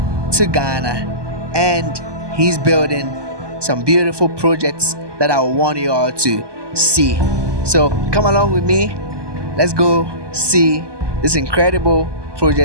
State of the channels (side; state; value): left; late; 1.2 ms